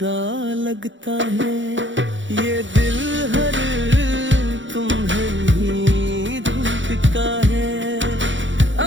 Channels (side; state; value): left; late; 0.55 ms